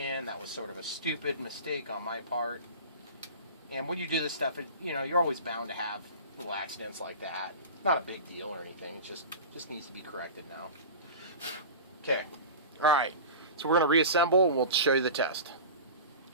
That was sort of a stupid mistake on my part. And when you do this stuff, you know, you're always bound to have little accidents like that. Not a big deal or anything. It just needs to be corrected now. Okay. All right. So we're going to reassemble and we'll show you the test.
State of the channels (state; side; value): inverted; both; correlation -0.33